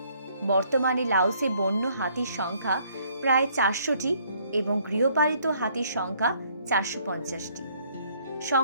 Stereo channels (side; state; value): both; inverted; correlation -0.64